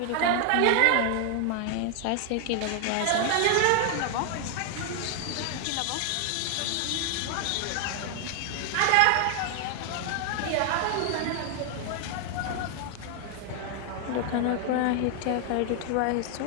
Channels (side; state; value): both; different; correlation 0.00